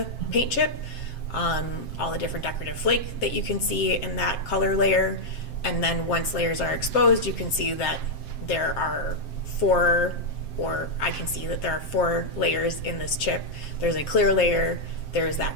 paint chip, all the different decorative flake that you can see in that color layer. And then once layers are exposed, you can see that there are four layers in this chip. There's a clear layer, there's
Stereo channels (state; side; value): late; right; 7.6 ms